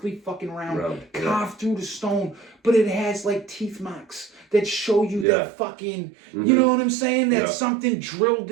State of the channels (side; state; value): left; drops out; at 5.2 s